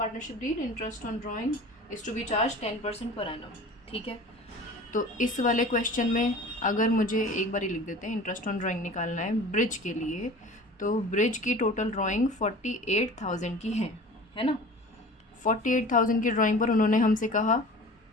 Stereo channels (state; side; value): normal; both; correlation 0.40